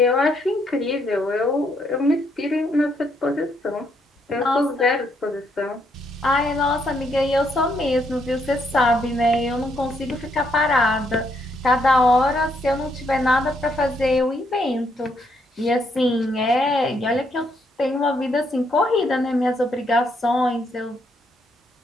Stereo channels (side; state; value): both; normal; correlation 0.74